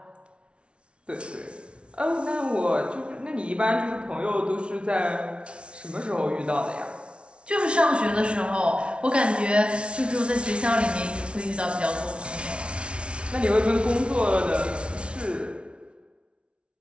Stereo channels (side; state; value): left; late; 0.059 ms